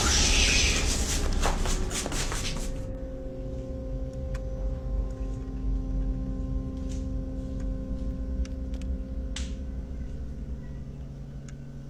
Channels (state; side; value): identical; both; correlation 1.00